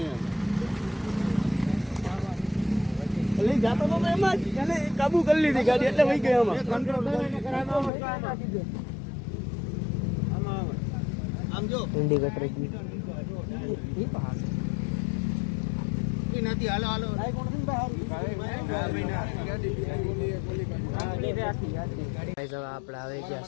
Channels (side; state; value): right; drops out; at 7.9 s